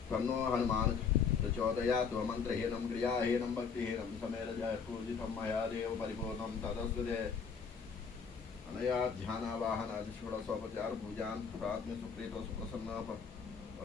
तन्नो हनुमान् प्रचोदयात्। मन्त्रहीनं क्रियाहीनं भक्तिहीनं समेरजः पूजितं मया देव परिपूर्णं तदस्तुते। अनया ध्यानावाहनादिषोडशोपचारपूजान् प्रार्थने सुप्रीतो सुप्रसन्नः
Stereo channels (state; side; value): quieter; right; 6.1 dB